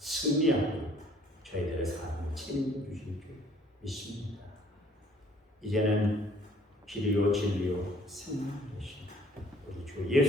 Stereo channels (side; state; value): both; normal; correlation 0.59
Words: 저희들의 삶을 책임져 주실 줄 믿습니다. 이제는 길이요 진리요 생명 되신 우리 주